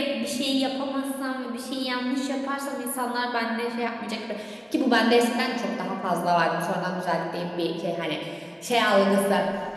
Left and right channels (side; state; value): both; identical; correlation 1.00